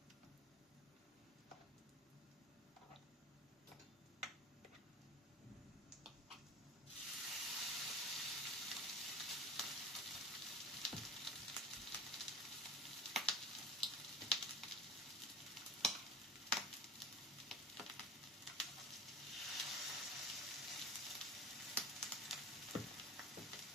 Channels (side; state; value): both; normal; correlation 0.34